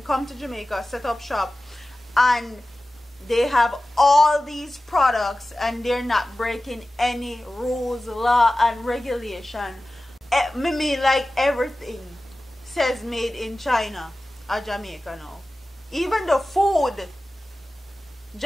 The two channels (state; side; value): normal; both; correlation 0.96